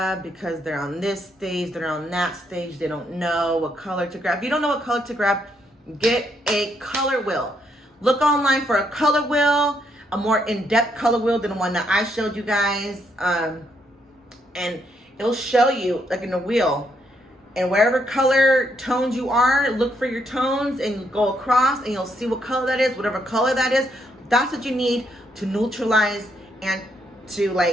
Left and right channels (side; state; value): both; normal; correlation 0.75